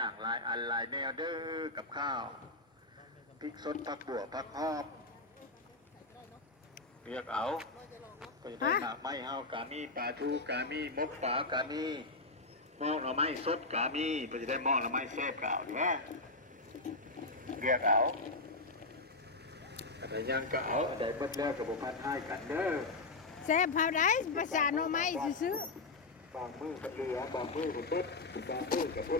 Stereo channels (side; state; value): right; quieter; 3.3 dB